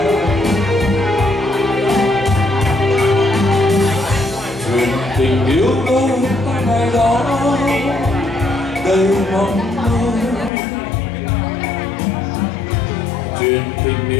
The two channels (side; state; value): right; drops out; at 10.5 s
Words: Chuyện tình yêu đôi ta ngày đó đầy mong mơ. Chuyện tình